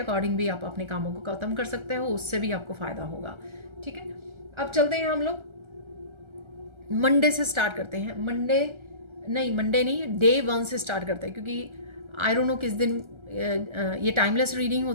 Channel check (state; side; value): late; left; 1.3 ms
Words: भी आप अपने कामों को ख़त्म कर सकते हो, उससे भी आपको फ़ायदा होगा। ठीक है, अब चलते हैं हम लोग मंडे से स्टार्ट करते हैं। मंडे नहीं, डे 1 से स्टार्ट करते हैं, क्योंकि आई डोंट नो किस दिन ये टाइमलेस रीडिंग